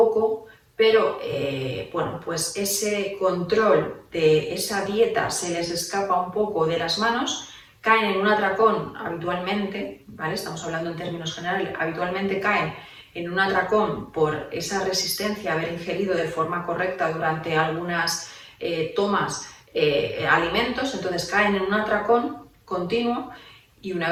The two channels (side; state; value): both; identical; correlation 1.00